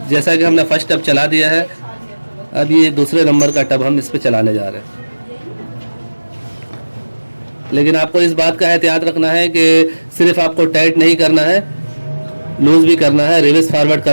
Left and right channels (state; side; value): inverted; both; correlation -1.00